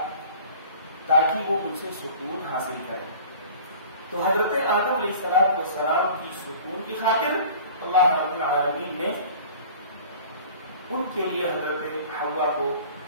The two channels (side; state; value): both; inverted; correlation -0.44